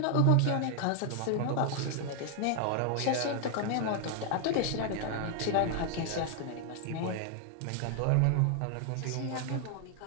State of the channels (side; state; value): both; different; correlation 0.00